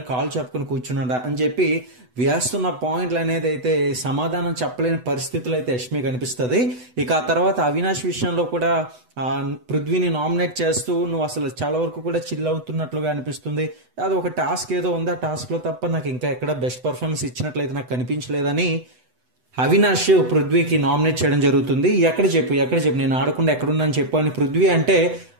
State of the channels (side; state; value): left; late; 8.0 ms